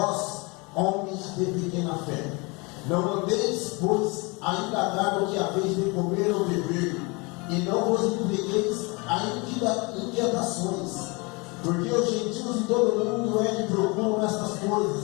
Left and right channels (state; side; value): quieter; right; 28.1 dB